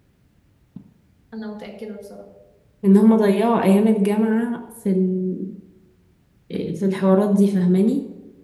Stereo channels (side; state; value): both; identical; correlation 1.00